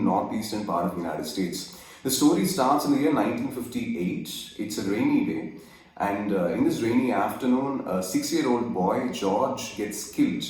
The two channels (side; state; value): both; identical; correlation 1.00